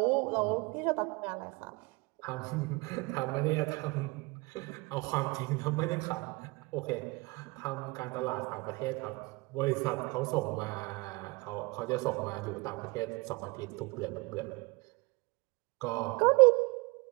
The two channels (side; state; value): left; quieter; 25.7 dB